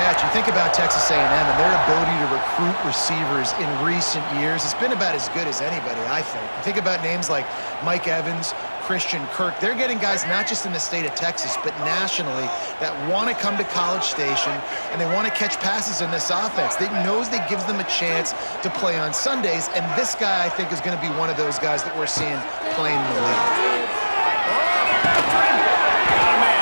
You think about Texas A&M and their ability to recruit receivers in recent years. It's been about as good as anybody, I think. You think about names like Mike Evans, Christian Kirk. They're getting guys not just in the state of Texas, but nationally that want to come to College Station and they want to catch passes in this offense. They knows that gives them a chance to play on Sundays, and this guy, I think, is going to be one of those guys that we're seeing playing in the league. Got a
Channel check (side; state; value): both; inverted; correlation -1.00